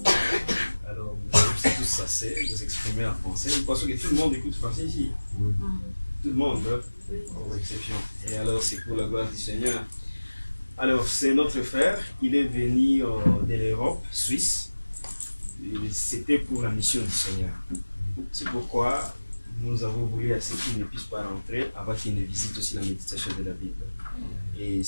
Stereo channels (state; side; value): inverted; both; correlation -1.00